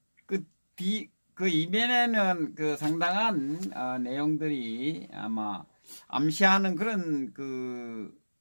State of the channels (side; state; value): both; inverted; correlation -1.00